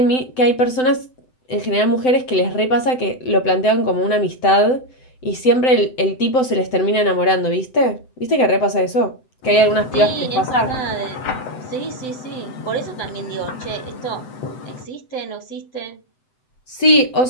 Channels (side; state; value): right; late; 7.8 ms